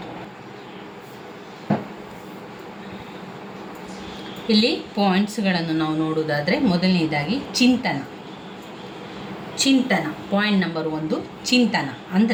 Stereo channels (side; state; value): both; identical; correlation 1.00